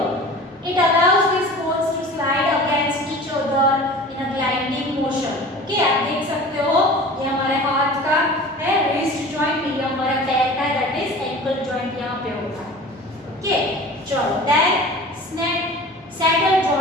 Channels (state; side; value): normal; both; correlation 0.39